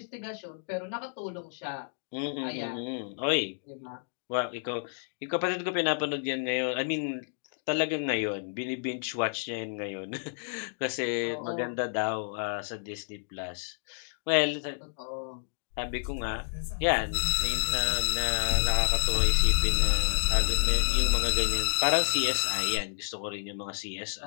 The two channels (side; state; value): right; silent; digital silence